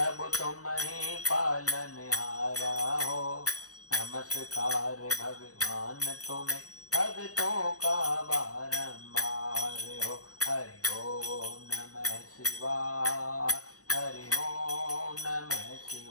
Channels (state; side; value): late; right; 0.66 ms